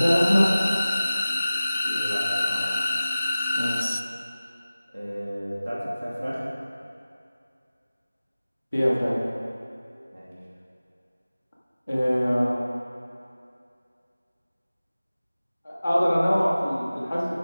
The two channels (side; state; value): both; inverted; correlation -0.97